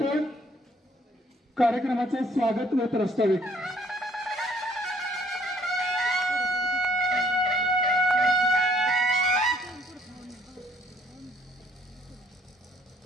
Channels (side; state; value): both; normal; correlation 0.63